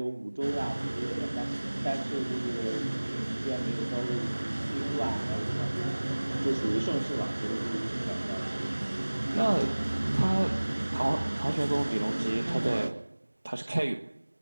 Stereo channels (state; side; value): inverted; both; correlation -1.00